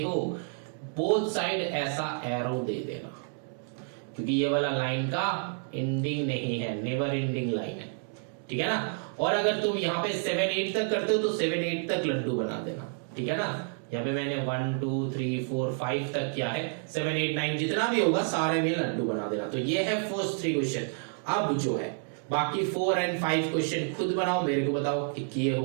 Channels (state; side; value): silent; left; 55 dB below the other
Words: हो बोथ साइड ऐसा एरो दे देना, क्योंकि ये वाला लाइन का एंडिंग नहीं है, नेवर एंडिंग लाइन है, ठीक है ना। और अगर तुम यहाँ पे 7 8 तक करते हो तो 7 8 तक लड्डू बना देना, ठीक है ना। यहाँ पे मैंने 1 2 3 4 5 तक किया है, 7 8 9 जितना भी होगा सारे में लड्डू बना देना। तो ये है फर्स्ट 3 क्वेश्चन। अब जो है बाकी 4 और 5 क्वेश्चन खुद बनाओ, मेरे को बताओ कि किए